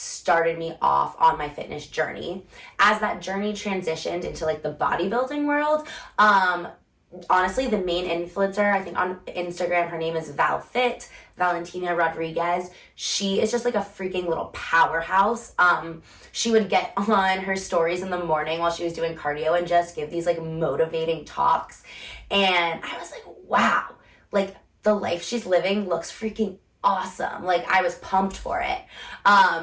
me off on my fitness journey. As that journey transitioned into like the bodybuilding world, honestly, the main influencer, I think on Instagram, her name is Valentina Rodriguez. She is just like a freaking little powerhouse. She would get on her stories in the morning while she was doing cardio and just give these like motivating talks. And I was like, wow, like the life she's living looks freaking awesome. Like I was pumped for it.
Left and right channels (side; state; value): both; identical; correlation 1.00